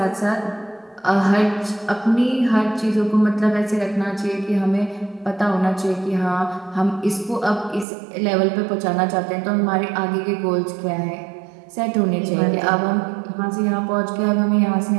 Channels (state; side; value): drops out; left; at 7.9 s